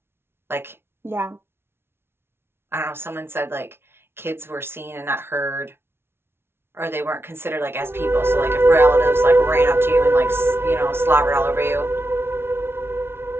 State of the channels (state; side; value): late; left; 0.12 ms